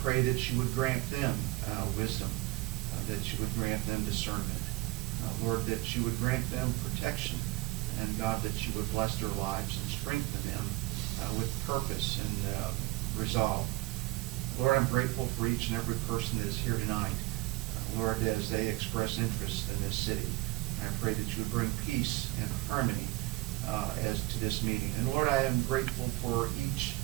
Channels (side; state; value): left; quieter; 20.6 dB